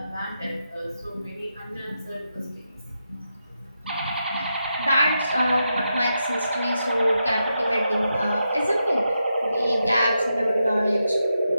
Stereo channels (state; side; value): inverted; both; correlation -0.85